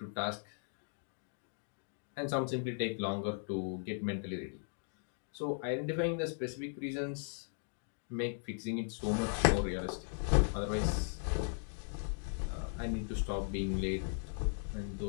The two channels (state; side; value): silent; right; digital silence